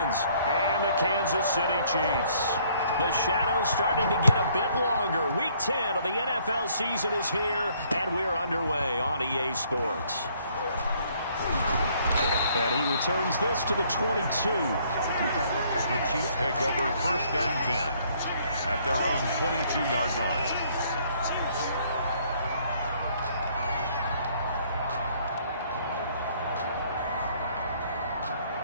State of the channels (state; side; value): inverted; both; correlation -0.64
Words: and the Kansas City Chiefs. The shadows starting to get a bit longer. Week 10 of the NFL season is here, and we're underway on EA Sports. And he returns this to the 22. The Chiefs take over 1st and 10 at their own 22-yard line.